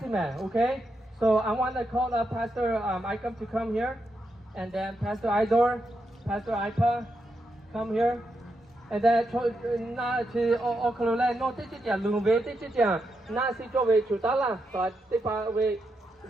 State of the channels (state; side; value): normal; both; correlation 0.83